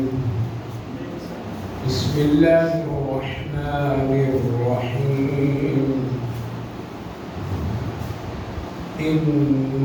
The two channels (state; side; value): identical; both; correlation 1.00